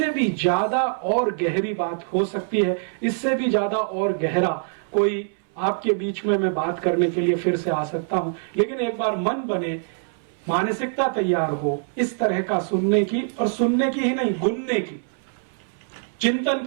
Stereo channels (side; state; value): left; silent; 63 dB below the other